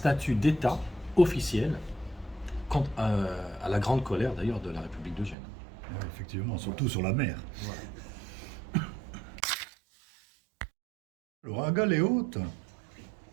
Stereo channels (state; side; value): drops out; left; at 5.4 s